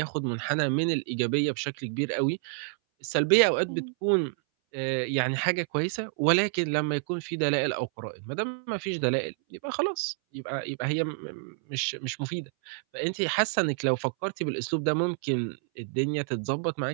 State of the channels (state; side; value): silent; left; 59 dB below the other